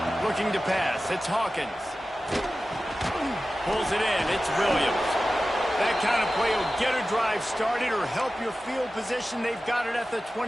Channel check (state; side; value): normal; both; correlation 0.95